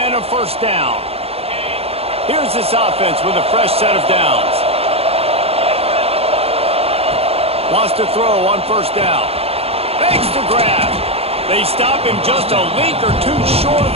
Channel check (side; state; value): left; late; 0.29 ms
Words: a first down. Here's this offense with a fresh set of downs. Wants to throw on first down. Makes the grab. They stop him just a link or two short of